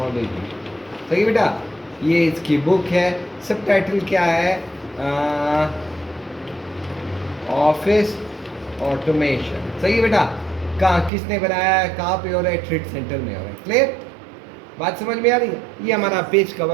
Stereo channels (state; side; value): drops out; left; at 11.1 s